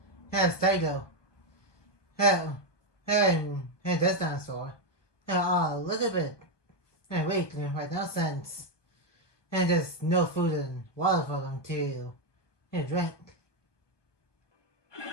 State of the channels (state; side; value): late; right; 1.2 ms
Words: Stego and this dinosaur are a little bit weak right now since there's no food and water for them to drink.